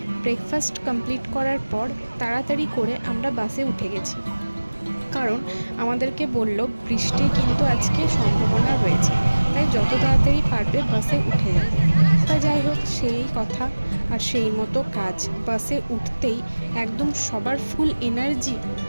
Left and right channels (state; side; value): inverted; both; correlation -1.00